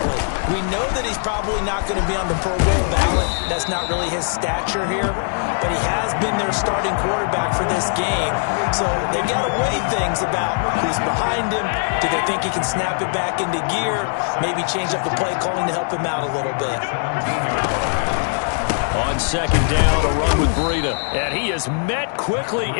We know that he's probably not going to be on the Pro Bowl ballot. That's not really his stature here. But he has been their starting quarterback for this game. So they've got to weigh things about who's behind him. Do they think he can snap it back into gear? Maybe change up the play calling to help him out a little bit. On 2nd down, a run with Breida. And he is met quickly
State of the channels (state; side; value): silent; right; 65 dB below the other